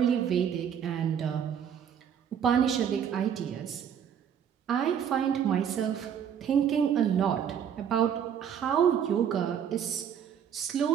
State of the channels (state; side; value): quieter; left; 8.5 dB